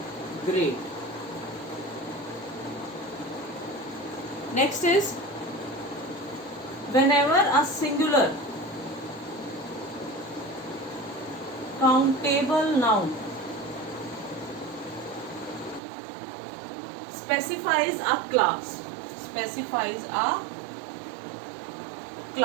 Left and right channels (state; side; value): drops out; left; at 15.8 s